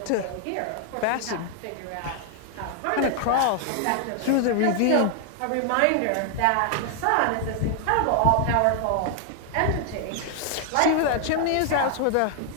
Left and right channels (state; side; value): different; both; correlation 0.00